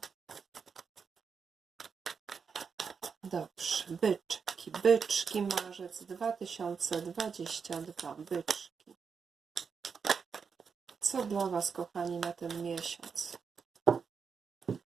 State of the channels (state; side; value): quieter; left; 5.9 dB